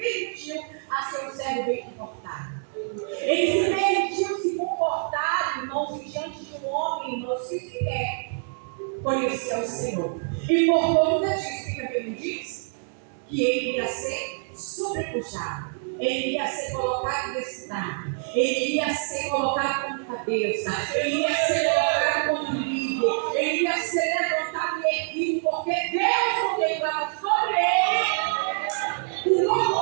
a ser um servo bem comportado. Ele se permitiu se comportar, irmãos, diante de um homem, irmãos, que sequer conhecia o Senhor. E por conta disso, o que a Bíblia diz? Que ele ia ser sobrepujado. Ele ia ser colocado nesse estado. Ele ia ser colocado como cabeça. Ele ia ser colocado como líder. Ele ia ser levantado e erguido, porque Deus contemplava sobre ele o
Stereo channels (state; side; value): silent; left; digital silence